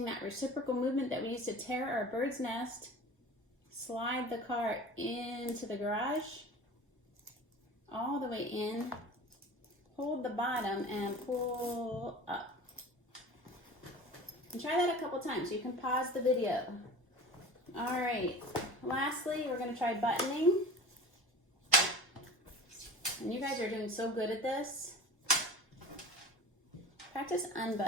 that reciprocal movement that we used to tear our bird's nest, slide the car into the garage, all the way in, hold the bottom and pull up. And try that a couple times. You can pause the video. All right, lastly, we're going to try buttoning. And you guys are doing so good at this. Practice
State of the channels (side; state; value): both; normal; correlation 0.38